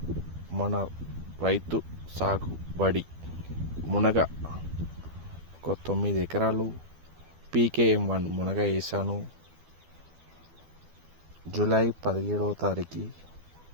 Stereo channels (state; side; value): late; left; 12 ms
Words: రైతు సాగుబడి మునగ ఒక 9 ఎకరాలు PKM1 మునగ వేసాను. జూలై 17వ తారీఖు